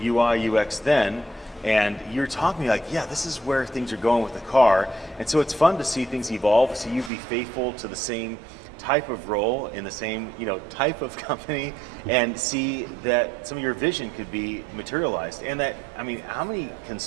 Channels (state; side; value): drops out; left; at 7.1 s